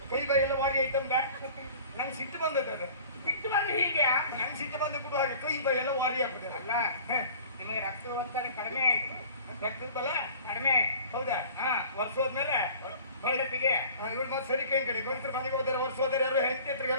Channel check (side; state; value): both; inverted; correlation -0.45